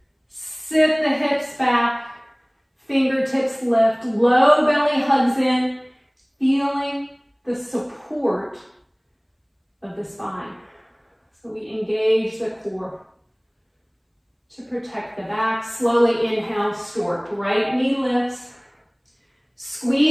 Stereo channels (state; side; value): identical; both; correlation 1.00